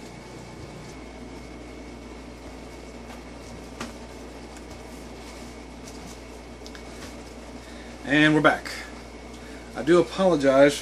And we're back. I do apologize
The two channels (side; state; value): both; identical; correlation 1.00